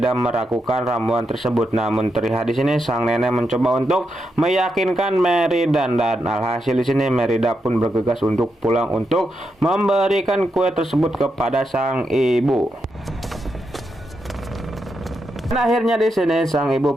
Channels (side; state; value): both; normal; correlation 0.84